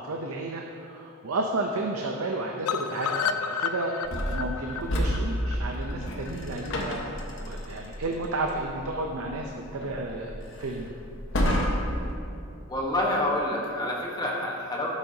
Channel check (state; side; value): normal; both; correlation 0.30